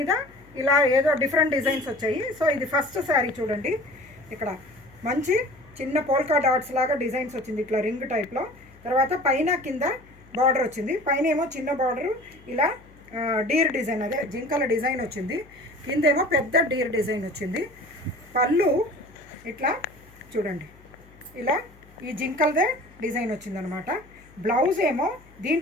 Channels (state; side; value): noise; left; hum, 25 dB below the sound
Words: ఇలా ఏదో డిఫరెంట్ డిజైన్స్ వచ్చాయి. సో ఇది ఫస్ట్ శారీ చూడండి. ఇక్కడ మంచి చిన్న పోల్కా డాట్స్ లాగా డిజైన్స్ వచ్చింది, ఇట్లా రింగ్ టైప్లో. తర్వాత పైన కింద బార్డర్ వచ్చింది. పైన ఏమో చిన్న బార్డరు ఇలా డీర్ డిజైన్, అదే జింకల డిజైన్ వచ్చింది. కిందేమో పెద్ద డీర్ డిజైన్ వచ్చింది. పళ్ళు ఇట్లా చూడండి, ఇలా ఈ జింకల్దే డిజైన్ వచ్చిందనమాట. బ్లౌజ్ ఏమో